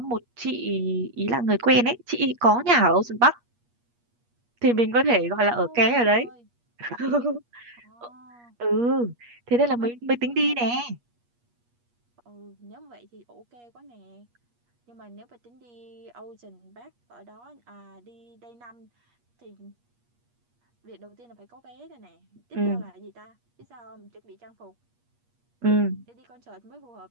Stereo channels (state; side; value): late; left; 8.4 ms